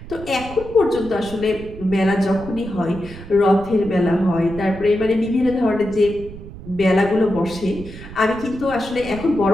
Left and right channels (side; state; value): right; noise; rumble, 14 dB below the sound